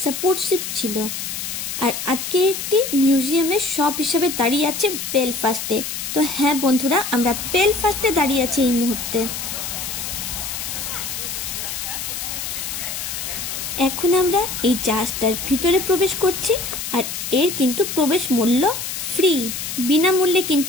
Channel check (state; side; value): noise; left; hiss, 5 dB below the sound